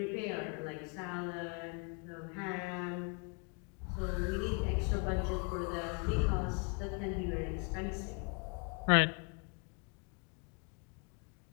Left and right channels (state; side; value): quieter; right; 36.1 dB